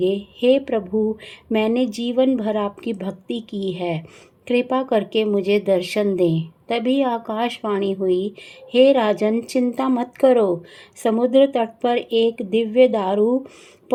हे प्रभु, मैंने जीवन भर आपकी भक्ति की है, कृपा करके मुझे दर्शन दें। तभी आकाशवाणी हुई, हे राजन, चिंता मत करो। समुद्र तट पर एक दिव्य दारू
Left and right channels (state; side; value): identical; both; correlation 1.00